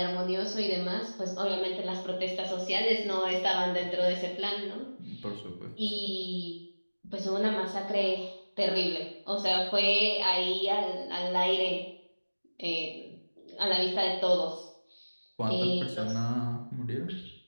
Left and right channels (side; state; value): both; inverted; correlation -1.00